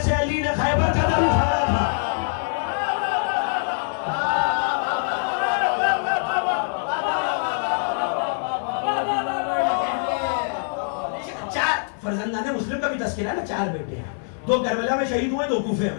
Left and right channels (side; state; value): right; silent; 63 dB below the other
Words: علی نے خیبر کا در اکھاڑا تھا. فرزندان مسلم کا بھی تذکرہ ہے نا، 4 بیٹے ہیں، 2 کربلا میں شہید ہوئے، 2 کوفے